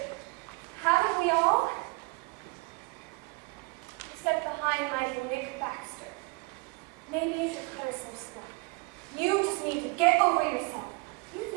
haven't we all? Except the high and mighty Nick Baxter. Maybe you should cut her some slack. You just need to get over yourself. You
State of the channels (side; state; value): left; quieter; 27.8 dB